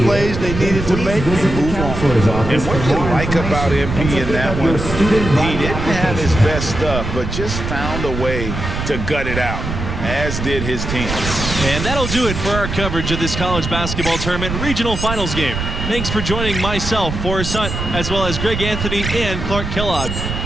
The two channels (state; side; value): noise; right; rumble, 5 dB below the sound